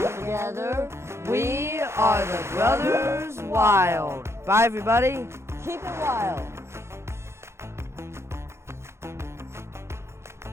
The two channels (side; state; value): left; late; 0.13 ms